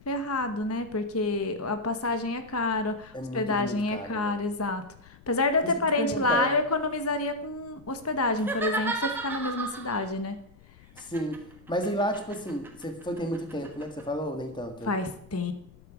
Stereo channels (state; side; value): noise; left; rumble, 24 dB below the sound